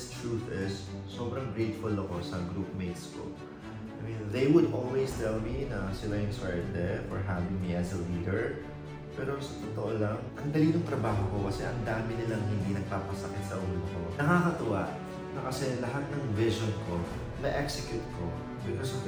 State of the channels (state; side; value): identical; both; correlation 1.00